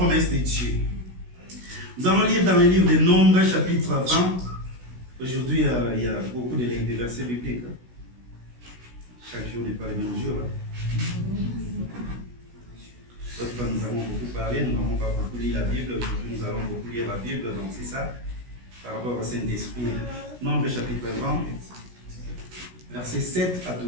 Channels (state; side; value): late; left; 16 ms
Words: de Dieu. Nous allons lire dans le livre des Nombres, chapitre 20. Aujourd'hui, il y a beaucoup de versets bibliques. Chaque jour n'est pas le même jour. D'autres fois, nous avons beaucoup parlé, nous n'avons pas beaucoup lu la Bible. Aujourd'hui, nous allons beaucoup lire la Bible. Donc, c'est ça, par rapport au Saint-Esprit. Nombres, chapitre 20, versets 7 à